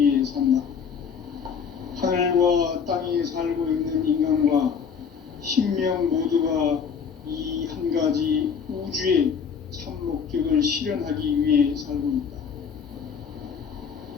산다. 하늘과 땅에 살고 있는 인간과 신명 모두가 이 한 가지 우주의 참 목적을 실현하기 위해 살고 있다.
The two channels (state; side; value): quieter; right; 6.6 dB